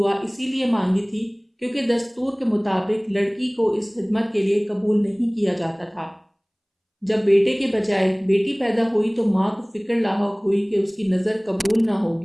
اسی لیے مانگی تھی کیونکہ دستور کے مطابق لڑکی کو اس خدمت کے لیے قبول نہیں کیا جاتا تھا۔ جب بیٹے کے بجائے بیٹی پیدا ہوئی تو ماں کو فکر لاحق ہوئی کہ اس کی نظر قبول نہ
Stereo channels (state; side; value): identical; both; correlation 1.00